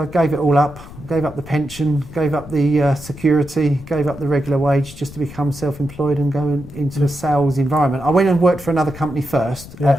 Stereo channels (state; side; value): noise; left; rumble, 16 dB below the sound